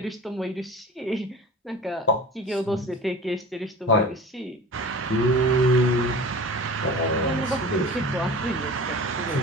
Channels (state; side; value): normal; both; correlation 0.38